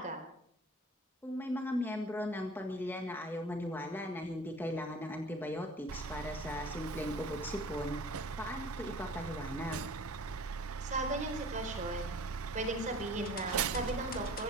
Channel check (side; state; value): both; normal; correlation 0.46